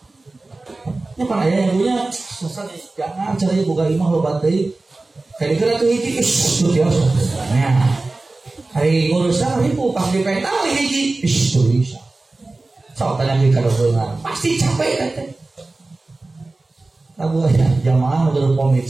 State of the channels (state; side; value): quieter; left; 3.2 dB